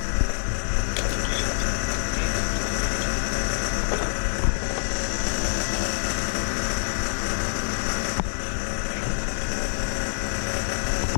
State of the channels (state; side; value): silent; right; digital silence